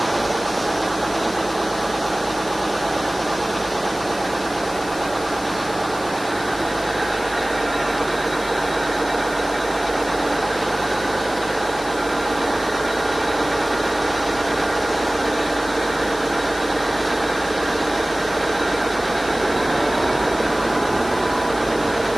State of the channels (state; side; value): noise; left; hiss, 15 dB below the sound